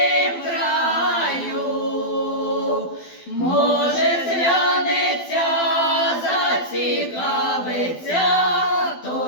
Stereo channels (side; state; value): right; late; 12 ms